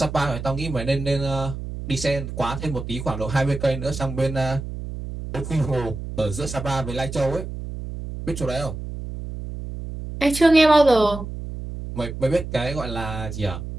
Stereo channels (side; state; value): right; noise; hum, 8 dB below the sound